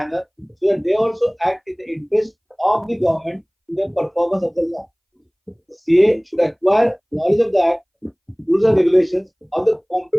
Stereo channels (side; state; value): both; identical; correlation 1.00